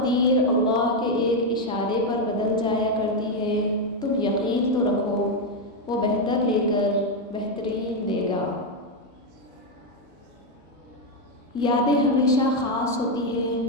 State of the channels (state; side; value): normal; both; correlation 0.04